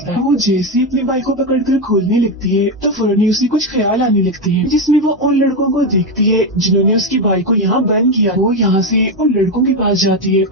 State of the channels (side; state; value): both; normal; correlation 0.10